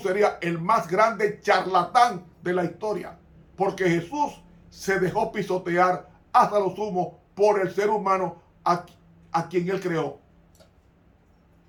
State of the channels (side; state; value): both; identical; correlation 1.00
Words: sería el más grande charlatán de la historia, porque Jesús se dejó pisotear hasta lo sumo por el ser humano a quien él creó.